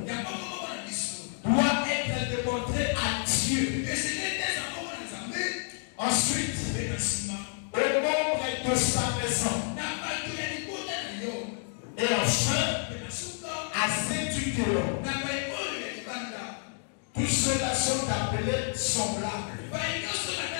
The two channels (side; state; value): right; silent; 58 dB below the other